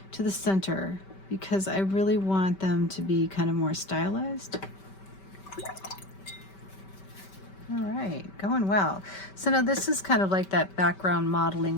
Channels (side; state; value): right; late; 5.2 ms